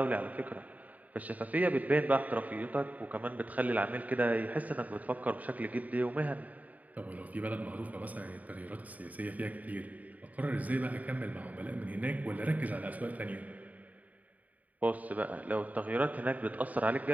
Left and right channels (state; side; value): late; left; 0.074 ms